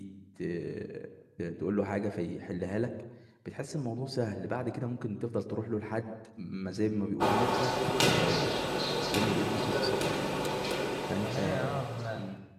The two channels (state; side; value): identical; both; correlation 1.00